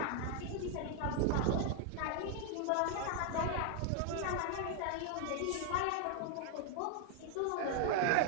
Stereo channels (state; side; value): different; both; correlation 0.00